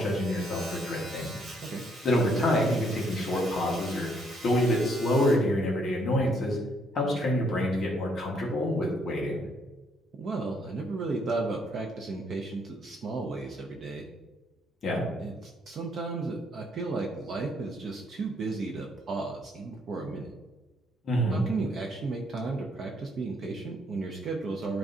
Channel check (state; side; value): normal; both; correlation 0.69